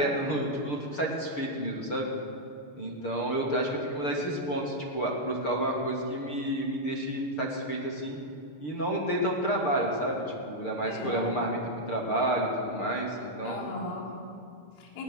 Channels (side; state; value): right; late; 6.7 ms